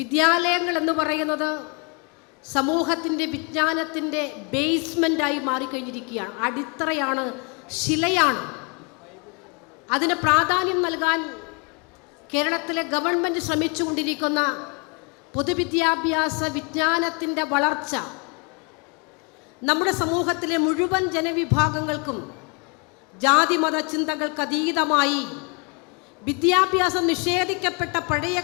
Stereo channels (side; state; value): right; quieter; 34.4 dB